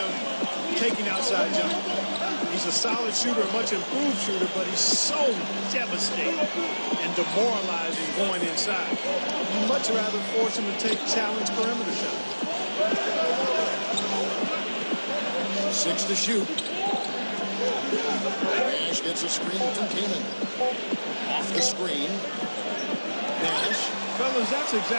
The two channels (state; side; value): inverted; both; correlation -1.00